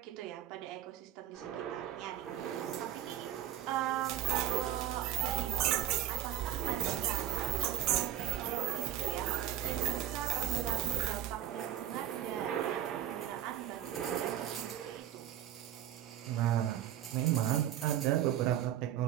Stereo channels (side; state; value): left; quieter; 11.7 dB